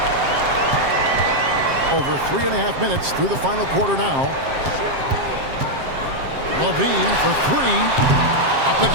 Over 3.5 minutes through the final quarter now. Levine for 3. Up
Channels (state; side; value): late; left; 7.5 ms